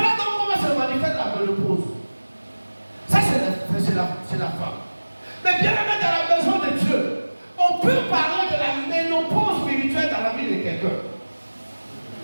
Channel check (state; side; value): inverted; both; correlation -1.00